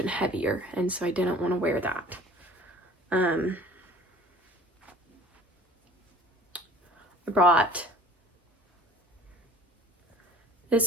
heavier, and so I didn't want to wear that. I brought,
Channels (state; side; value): normal; both; correlation 0.47